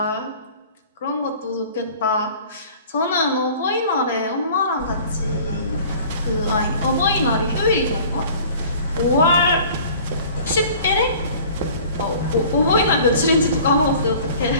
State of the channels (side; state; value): both; inverted; correlation -0.47